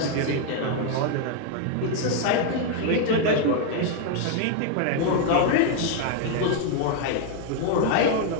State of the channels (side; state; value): both; different; correlation 0.00